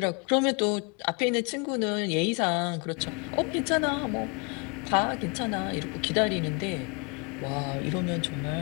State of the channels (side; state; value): right; quieter; 32.5 dB